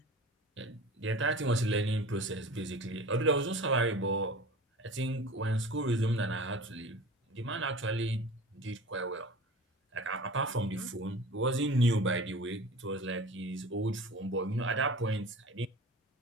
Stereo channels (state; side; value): normal; both; correlation 0.38